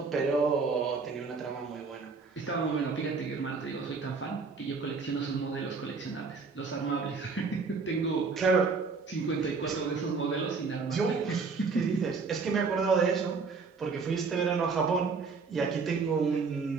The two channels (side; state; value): left; quieter; 4.7 dB